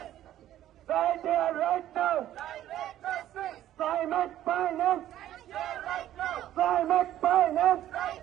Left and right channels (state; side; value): quieter; left; 12.6 dB